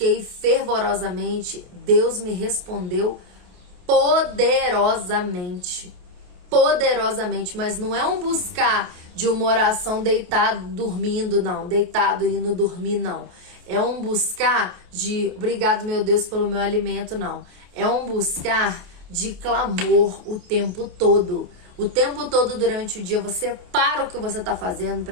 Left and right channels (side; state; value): left; late; 28 ms